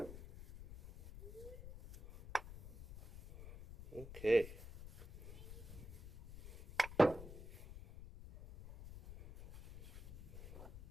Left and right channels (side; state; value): left; noise; rumble, 13 dB below the sound